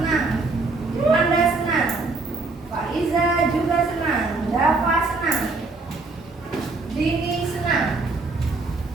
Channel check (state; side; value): quieter; left; 3.7 dB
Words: Anda senang, Faiza juga senang, Dava senang, Dini senang,